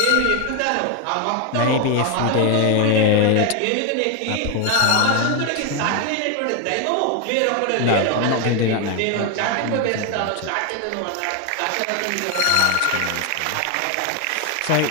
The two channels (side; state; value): both; different; correlation 0.01